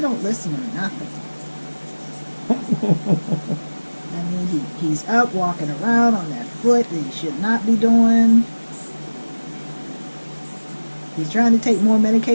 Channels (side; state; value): both; inverted; correlation -1.00